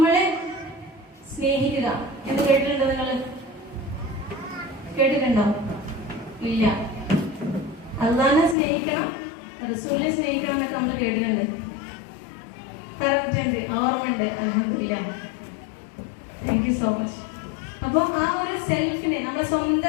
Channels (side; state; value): right; drops out; at 8.6 s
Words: സ്നേഹിക്കുക എന്ന് കേട്ടിട്ടുണ്ടോ? നിങ്ങൾ കേട്ടിട്ടുണ്ടോ? ഇല്ല. അള്ളാനെ സ്നേഹിക്കണം, റസൂലിനെ സ്നേഹിക്കണം എന്നൊക്കെ നമ്മൾ കേട്ടിട്ടുണ്ട്, പറഞ്ഞിട്ടുണ്ട്, ഓർമ്മയുണ്ട്. അൽഹംദുലില്ലാഹ്, താങ്ക് യു സോ മച്ച്. അപ്പൊ ആ ഒരു സെൽഫിനെ, നമ്മുടെ